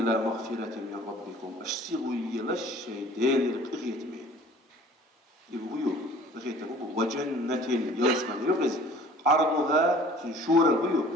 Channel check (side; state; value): both; normal; correlation 0.50